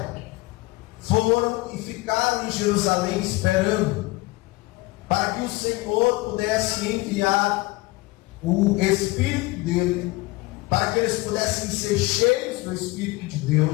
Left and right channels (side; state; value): right; quieter; 21.9 dB